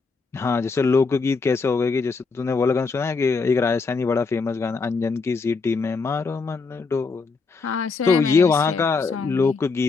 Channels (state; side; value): quieter; right; 4.4 dB